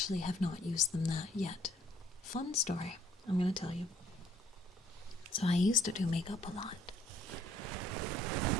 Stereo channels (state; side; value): normal; both; correlation 0.61